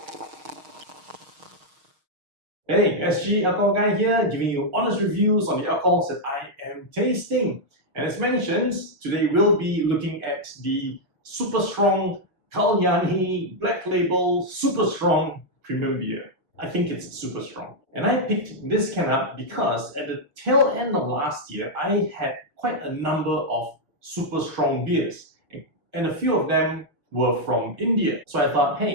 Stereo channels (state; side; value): late; left; 6.5 ms